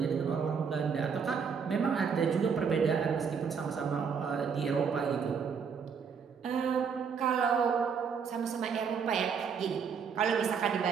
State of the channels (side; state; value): left; quieter; 6.3 dB